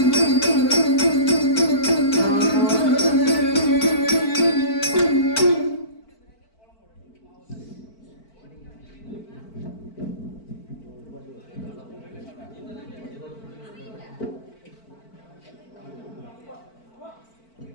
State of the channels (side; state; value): right; late; 4.5 ms